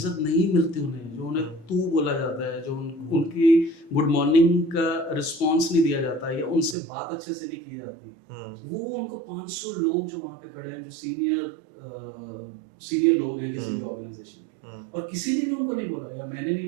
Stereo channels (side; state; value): left; drops out; at 6.8 s